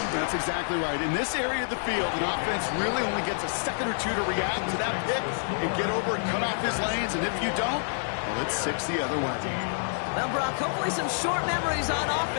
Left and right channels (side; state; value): right; silent; digital silence